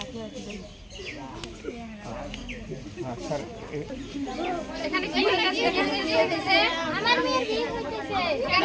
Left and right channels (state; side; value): identical; both; correlation 1.00